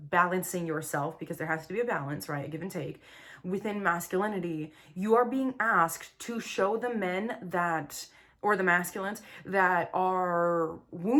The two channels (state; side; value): identical; both; correlation 1.00